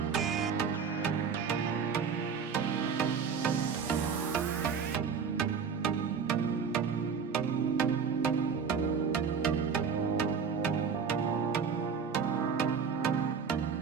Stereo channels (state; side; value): quieter; left; 6.2 dB